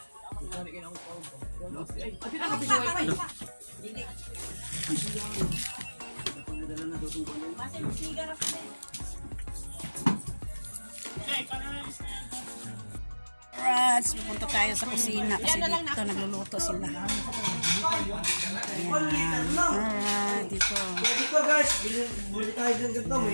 Alright, pupunta tayo sa kusina kasi dito nagluluto sila. Alright, dito. Dito guys, bili tayo din ganito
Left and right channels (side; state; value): both; inverted; correlation -1.00